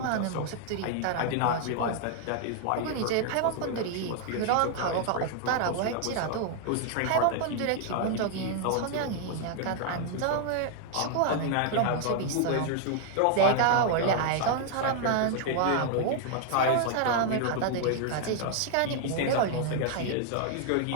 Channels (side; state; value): both; different; correlation 0.00